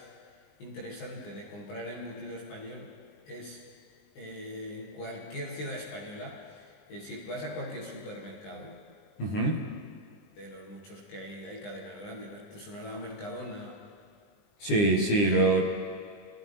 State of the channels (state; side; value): late; right; 20 ms